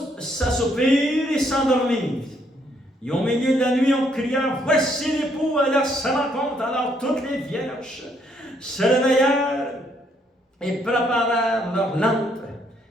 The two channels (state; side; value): normal; both; correlation 0.70